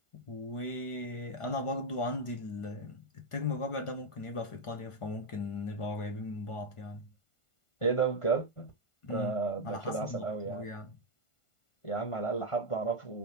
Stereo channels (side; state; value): right; late; 1.5 ms